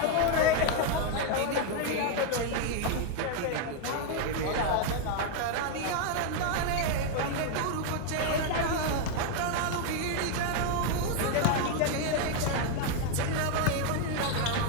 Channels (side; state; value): both; different; correlation 0.01